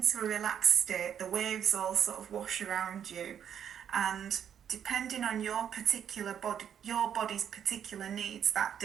a relaxed state. The waves all sort of wash around you. And depending on your particular body, your body's particular needs that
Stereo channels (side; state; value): left; quieter; 8.9 dB